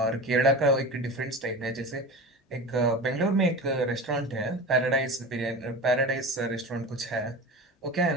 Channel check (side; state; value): both; normal; correlation 0.31